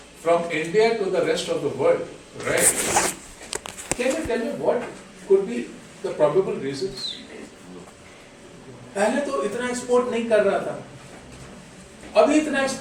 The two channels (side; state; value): both; identical; correlation 1.00